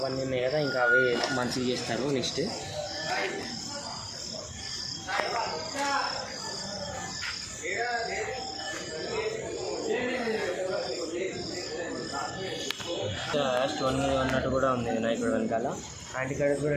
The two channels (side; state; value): both; identical; correlation 1.00